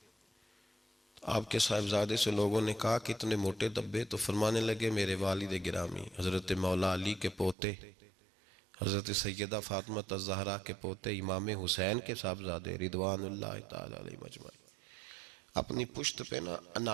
آپ کے صاحبزادے سے لوگوں نے کہا کہ اتنے موٹے دھبے، تو فرمانے لگے میرے والد گرامی حضرت مولا علی کے پوتے، حضرت سیدہ فاطمہ الزہرا کے پوتے امام حسین کے صاحبزادے رضوان اللہ تعالی علیہ مجمعین، اپنی پشت پہ نا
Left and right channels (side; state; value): left; drops out; at 7.6 s